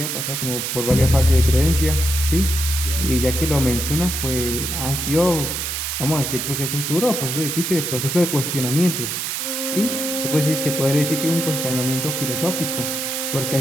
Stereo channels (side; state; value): right; noise; hiss, 3 dB below the sound